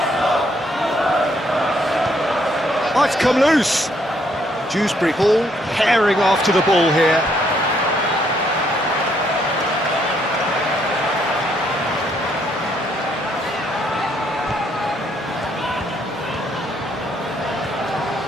Oh, it's come loose. Dewsbury Hall herring after the ball here.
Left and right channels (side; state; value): both; normal; correlation 0.70